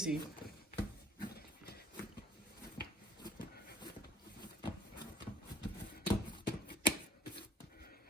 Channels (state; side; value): normal; both; correlation 0.55